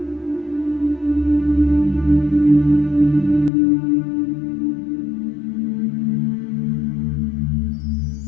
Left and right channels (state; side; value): drops out; right; at 3.5 s